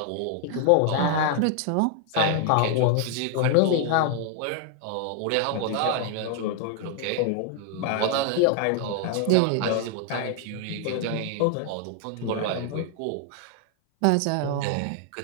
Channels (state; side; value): different; both; correlation 0.00